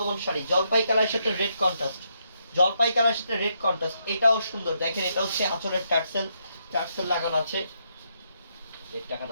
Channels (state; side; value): inverted; both; correlation -0.78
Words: শাড়ি। জলপাই কালারের সাথে রেড কন্ট্রাস্ট, জলপাই কালারের সাথে রেড কন্ট্রাস্ট, এটাও সুন্দর। দেখেন এটা হচ্ছে আঁচলের টার্সেল, টার্সেল লাগানো আছে। রেড টাকা